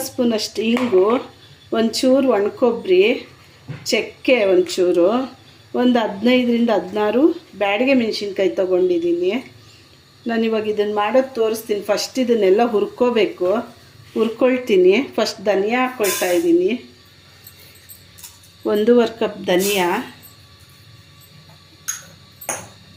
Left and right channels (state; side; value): identical; both; correlation 1.00